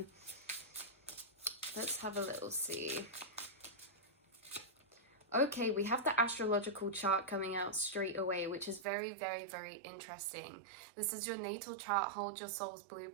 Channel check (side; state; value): left; drops out; at 8.8 s